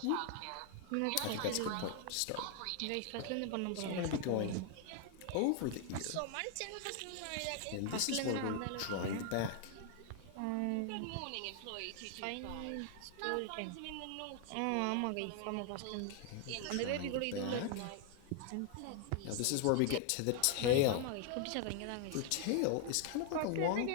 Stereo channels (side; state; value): both; different; correlation 0.00